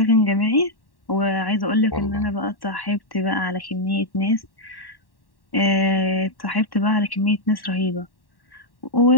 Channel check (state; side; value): late; right; 1.1 ms